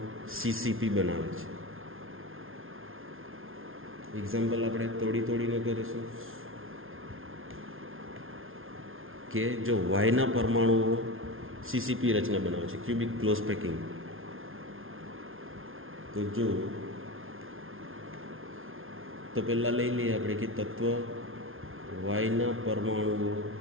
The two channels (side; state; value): left; late; 0.60 ms